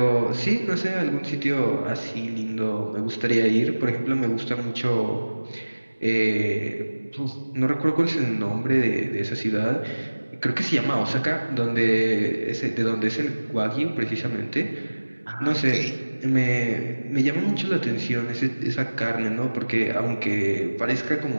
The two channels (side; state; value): both; inverted; correlation -1.00